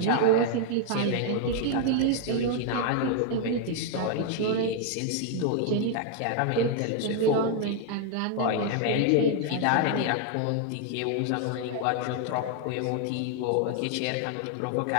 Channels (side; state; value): both; different; correlation 0.00